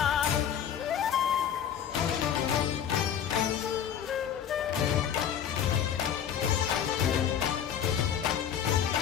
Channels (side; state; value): right; quieter; 9.1 dB